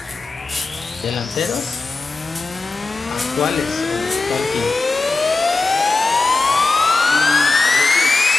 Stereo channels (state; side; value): quieter; right; 3.7 dB